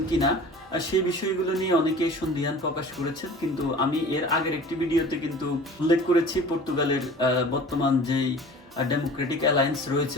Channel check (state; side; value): normal; both; correlation 0.42